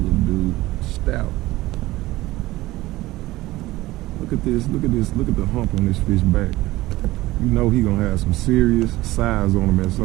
dude. Stout. Look at this, look at this, look at the hump on this fish back. You know he gonna have some serious size on him at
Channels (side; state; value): left; quieter; 17.9 dB